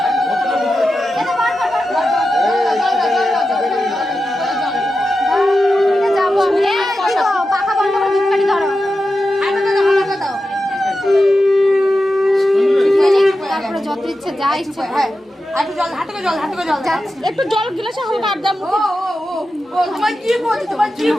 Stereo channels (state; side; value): normal; both; correlation 0.91